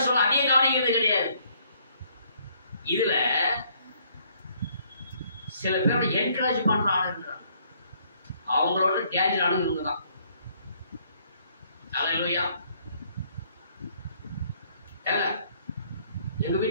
சொல்ல அதையும் கவனிக்கிறது கிடையாது. இதுல சில பேரோட என்கரேஜ் பண்ற ஆள் இருக்கிறாங்க. அவங்களோட டேஞ்சர் ஆனது இவங்க தான். அல்லேலூயா. எங்க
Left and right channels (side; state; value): both; inverted; correlation -0.65